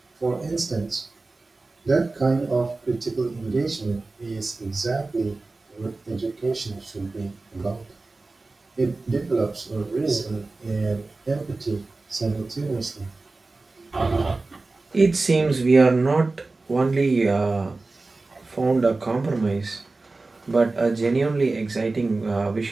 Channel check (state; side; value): quieter; left; 3.4 dB